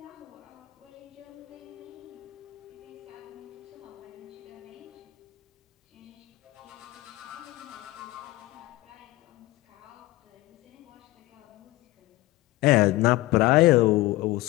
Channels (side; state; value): right; quieter; 18.8 dB